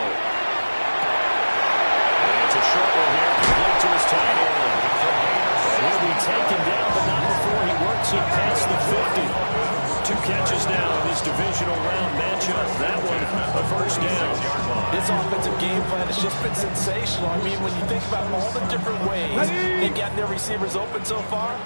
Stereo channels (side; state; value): both; inverted; correlation -1.00